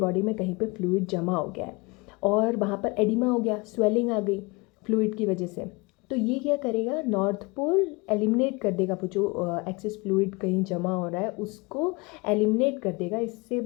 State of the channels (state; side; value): quieter; right; 26.6 dB